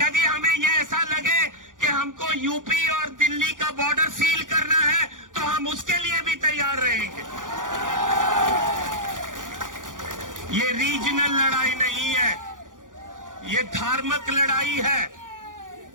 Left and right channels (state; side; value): late; left; 0.88 ms